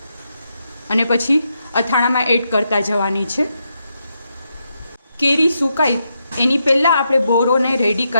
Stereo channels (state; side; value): inverted; both; correlation -0.83